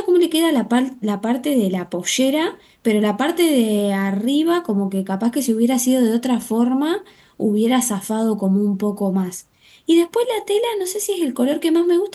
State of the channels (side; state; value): both; identical; correlation 1.00